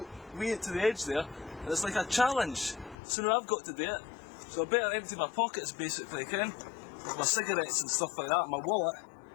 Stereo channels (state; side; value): drops out; right; at 3.0 s